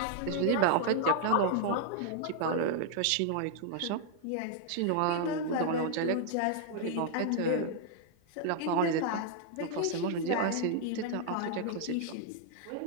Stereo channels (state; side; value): different; both; correlation -0.01